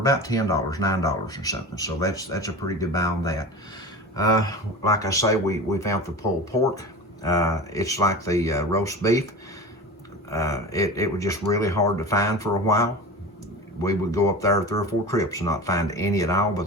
$9 or something. So that's a pretty good buy on that. Like I say, we found the pulled pork. It's like the roast beef. It was just really hard to find for a while. We would go up there 3 or 4 trips and not find any at all,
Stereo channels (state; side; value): normal; both; correlation 0.32